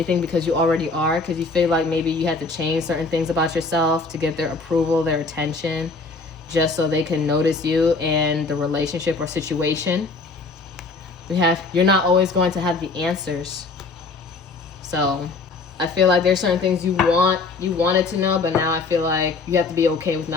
because you already are, because you feel like maybe you had to change certain things about yourself to get their approval, their attention, just so they can notice you and the relationship or situation. We have, you're not always going to have the answers. So I feel like there's certain things you wanted to know, but now I feel like you have to be okay with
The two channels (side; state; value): right; quieter; 3.8 dB